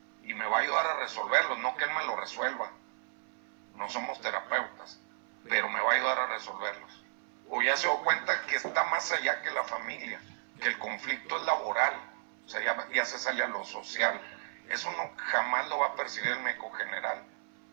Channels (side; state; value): left; silent; 55 dB below the other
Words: Y me va a ayudar a resolverlos, no que él me lo resuelva. No somos terapeutas, pero me va a ayudar a resolverlos. O ya se dio cuenta que está más allá que la familia, que el conflicto es laboral, o sea, ya se sale a lo social. Eso no, jamás lo va a percibir el médico general.